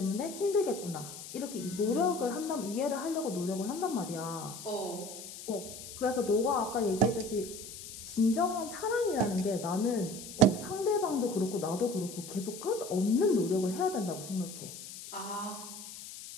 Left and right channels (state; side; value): noise; left; hiss, 12 dB below the sound